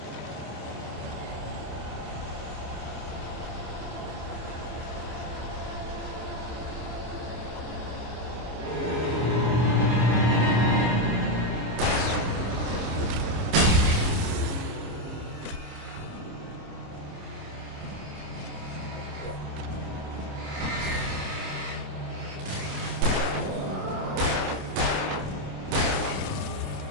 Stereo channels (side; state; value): left; late; 26 ms